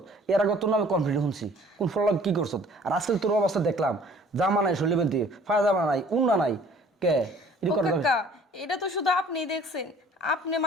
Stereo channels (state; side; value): normal; both; correlation 0.53